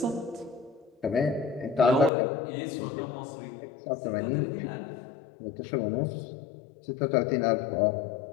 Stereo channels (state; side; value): drops out; right; at 2.1 s